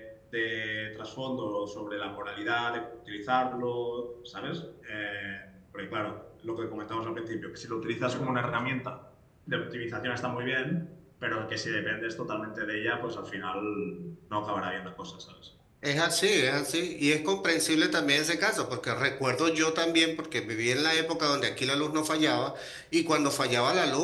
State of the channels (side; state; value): both; identical; correlation 1.00